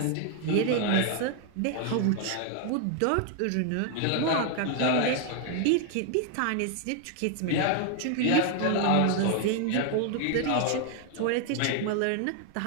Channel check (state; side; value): different; both; correlation 0.00